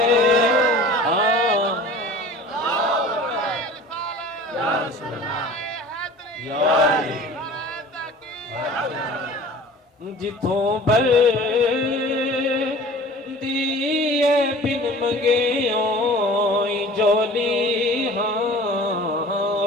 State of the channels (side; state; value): both; normal; correlation 0.43